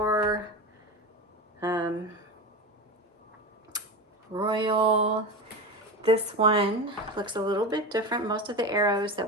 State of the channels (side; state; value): both; normal; correlation 0.24